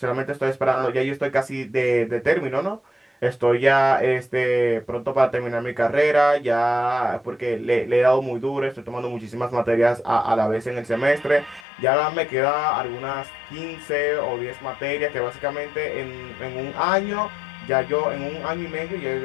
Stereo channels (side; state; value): right; drops out; at 11.7 s